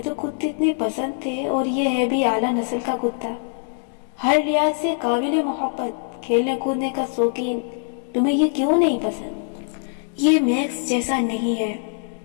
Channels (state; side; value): silent; right; digital silence